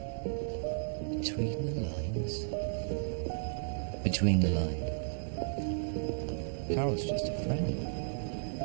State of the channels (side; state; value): left; silent; 55 dB below the other